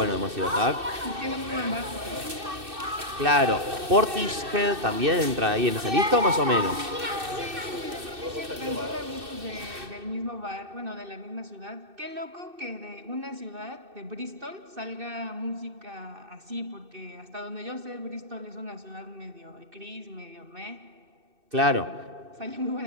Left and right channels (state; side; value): late; left; 2.6 ms